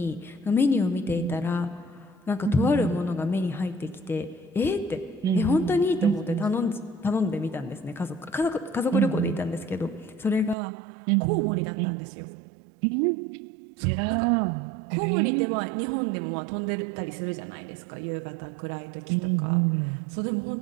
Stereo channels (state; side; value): drops out; left; at 10.6 s